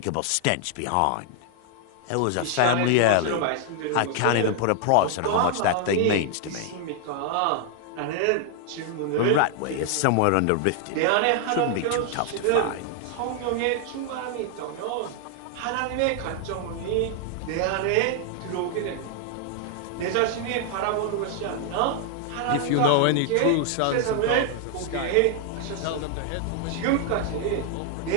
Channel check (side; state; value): both; different; correlation 0.00